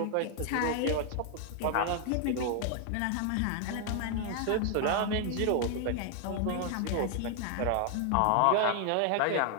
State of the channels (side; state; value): both; different; correlation 0.00